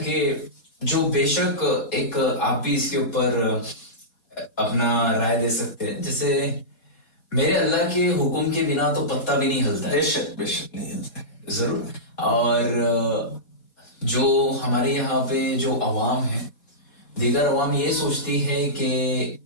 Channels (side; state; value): right; late; 4.2 ms